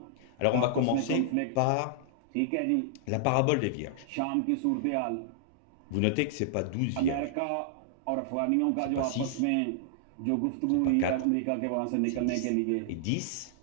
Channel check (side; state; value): both; different; correlation -0.01